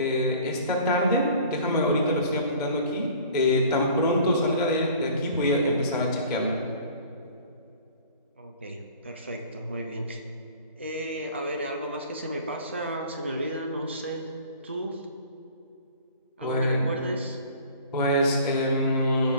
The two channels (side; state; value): both; inverted; correlation -0.47